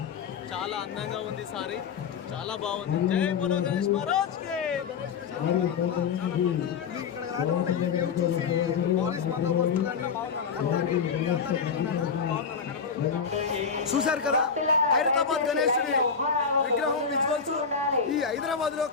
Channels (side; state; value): right; quieter; 6.1 dB